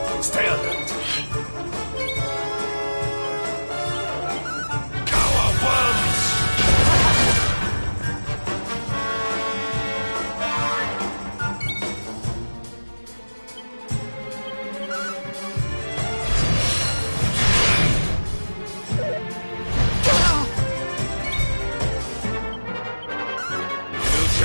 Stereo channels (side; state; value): both; inverted; correlation -1.00